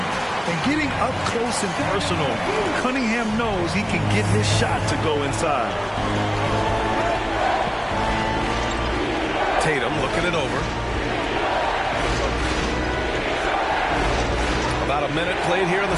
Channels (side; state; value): both; identical; correlation 1.00